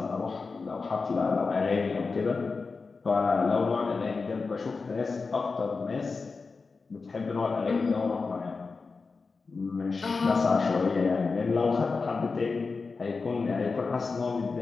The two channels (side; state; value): right; quieter; 4.4 dB